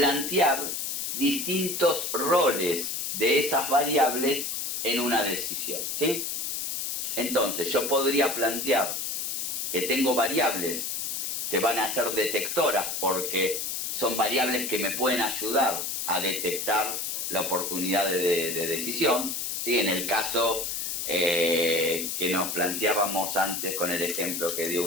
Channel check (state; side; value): noise; left; hiss, 2 dB below the sound